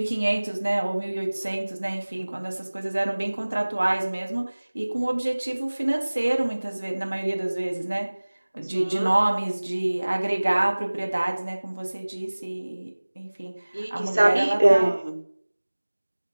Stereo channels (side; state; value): both; inverted; correlation -1.00